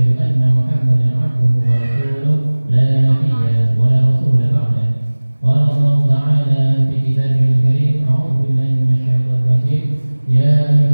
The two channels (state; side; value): inverted; both; correlation -1.00